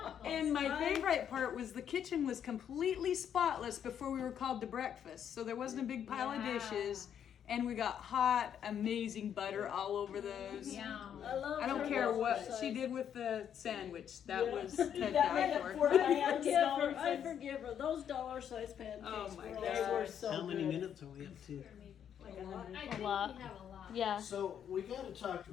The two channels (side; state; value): right; quieter; 8.9 dB